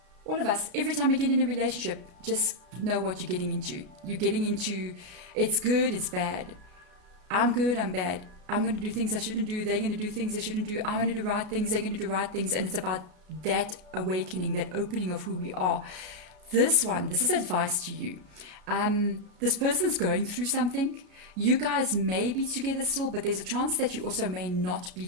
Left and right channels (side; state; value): left; late; 33 ms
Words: All of us, every time we get in a relationship, just know what you're getting into. You're getting into, it's good, it's bad. I'm good, I'm bad. I'm going to do things I shouldn't do. They're going to do things they shouldn't do. I'm going to do right things. They're going to do right things. And it's about that awakening, that opening of who we are. This is advice to you. This person's going through something. You guys may be together still, but there's a chance that you also may not be